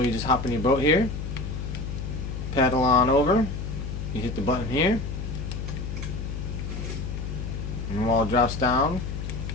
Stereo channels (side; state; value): left; noise; hum, 5 dB below the sound